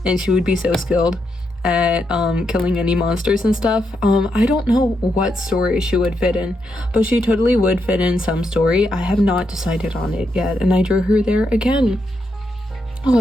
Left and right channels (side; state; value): both; normal; correlation 0.81